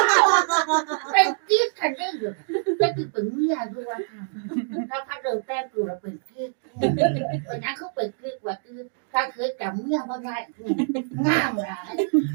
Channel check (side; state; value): left; silent; digital silence